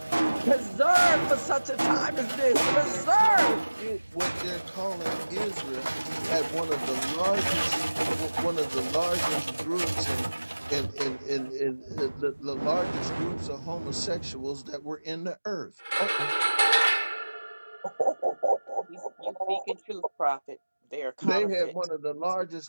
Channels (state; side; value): inverted; both; correlation -1.00